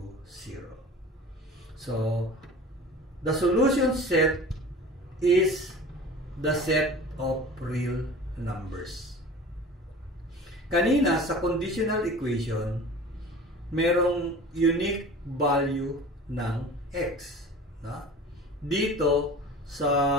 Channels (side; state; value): both; normal; correlation 0.39